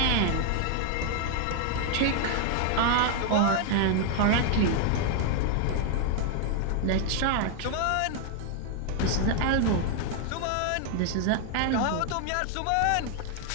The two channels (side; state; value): both; different; correlation 0.00